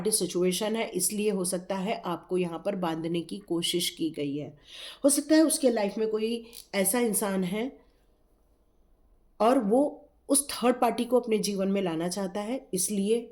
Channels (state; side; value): identical; both; correlation 1.00